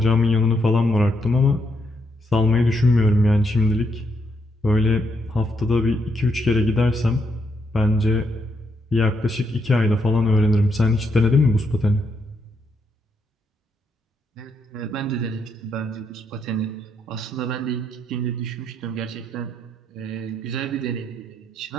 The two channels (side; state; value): both; normal; correlation 0.78